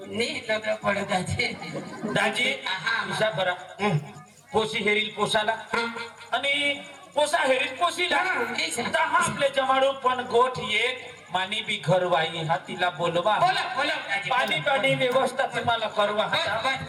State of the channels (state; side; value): identical; both; correlation 1.00